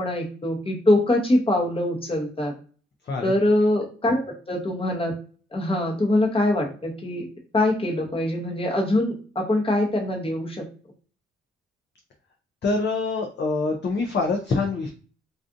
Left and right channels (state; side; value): normal; both; correlation 0.74